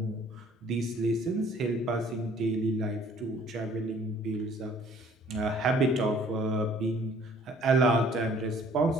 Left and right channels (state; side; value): normal; both; correlation 0.56